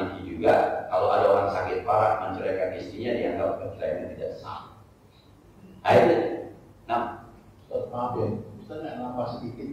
juga kalau ada orang sakit parah menceraikan istrinya dianggap perceraian tidak sah. Ayo, nah, maaf ya, Ustaz nggak nampak sedikit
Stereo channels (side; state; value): both; identical; correlation 1.00